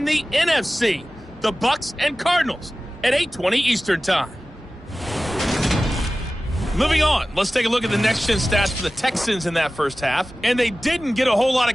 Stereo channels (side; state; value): both; normal; correlation 0.96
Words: the NFC. The Bucs and Cardinals at 8:20 Eastern Time. Moving on, let's take a look at the next-gen stats for the Texans in that first half. And they didn't get a whole lot